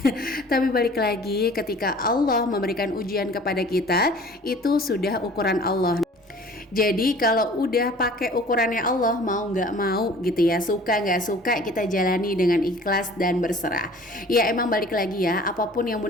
Tapi balik lagi, ketika Allah memberikan ujian kepada kita, itu sudah ukuran Allah. Jadi kalau udah pakai ukurannya Allah, mau nggak mau gitu ya, suka nggak suka, kita jalani dengan ikhlas dan berserah. Ya emang balik lagi ya, apapun yang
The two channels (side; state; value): both; normal; correlation 0.48